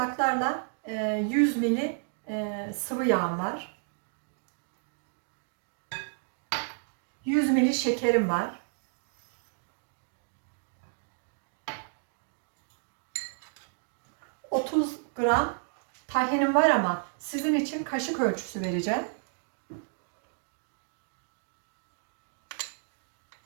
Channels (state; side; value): silent; left; digital silence